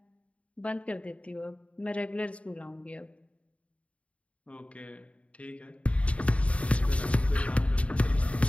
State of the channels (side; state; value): right; late; 0.064 ms